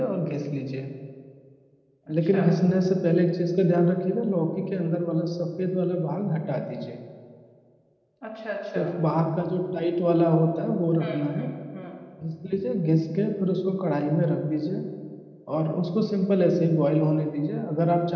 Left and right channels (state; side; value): identical; both; correlation 1.00